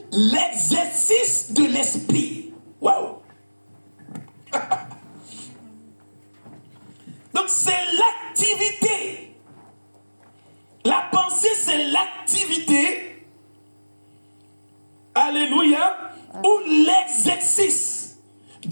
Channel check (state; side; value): inverted; both; correlation -1.00